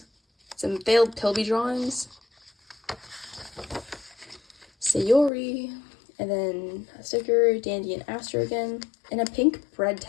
Some failed Pilby drawings. Sayori. And then a sticker, Dandy and Aster again. And a pink bread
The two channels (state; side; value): drops out; right; at 5.3 s